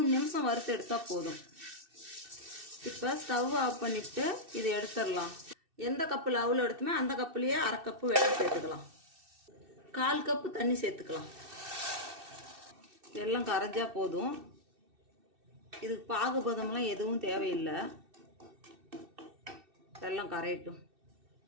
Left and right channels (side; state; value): left; late; 2.6 ms